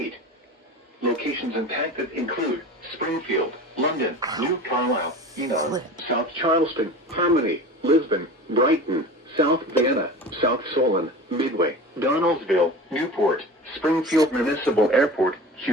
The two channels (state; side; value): normal; both; correlation 0.35